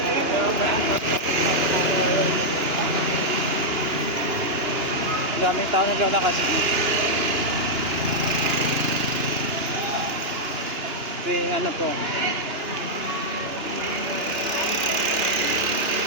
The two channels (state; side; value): late; left; 2.9 ms